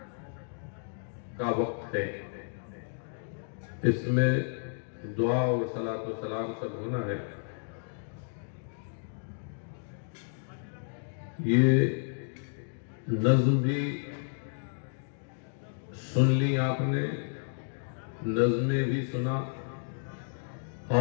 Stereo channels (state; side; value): silent; right; digital silence